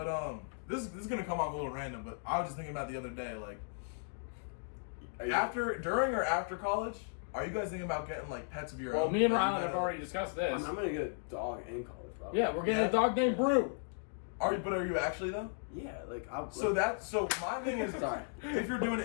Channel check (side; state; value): right; silent; digital silence